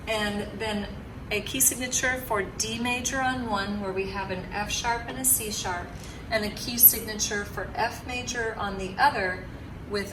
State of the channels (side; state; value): both; identical; correlation 1.00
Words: and then a key signature for D major on one, where we have an F sharp and a C sharp, and a key signature for F major on the other with